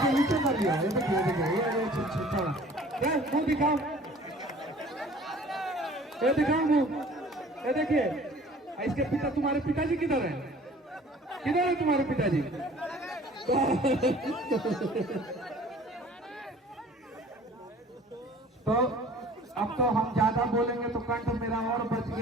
नीचे कर लिया, ये देखिए ये मुंह दिखाओ, ये दिखाओ मुंह, ये देखिए। इसके पिता, तुम्हारे पिताजी किधर है? किधर है तुम्हारे पिताजी? तो अब तो हम ज्यादा बोलेंगे तो कंठ मेरा और बच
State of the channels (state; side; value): normal; both; correlation 0.49